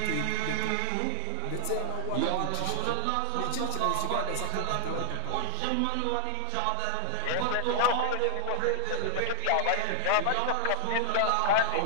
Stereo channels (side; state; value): both; different; correlation -0.01